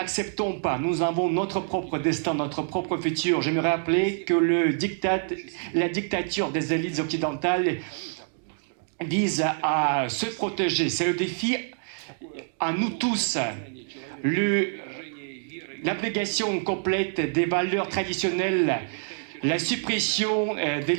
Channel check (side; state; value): left; silent; digital silence